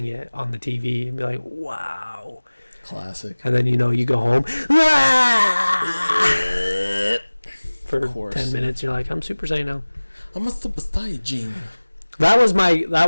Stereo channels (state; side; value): inverted; both; correlation -1.00